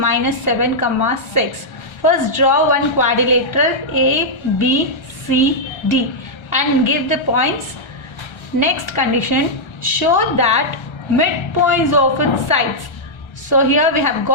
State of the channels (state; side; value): late; right; 1.3 ms